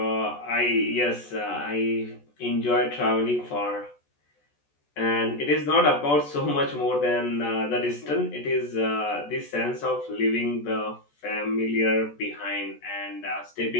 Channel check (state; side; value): late; right; 14 ms